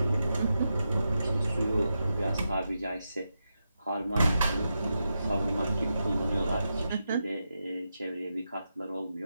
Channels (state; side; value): inverted; both; correlation -0.88